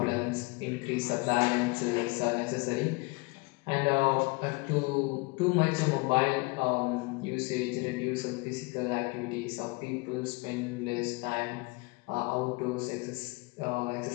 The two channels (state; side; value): quieter; right; 26.8 dB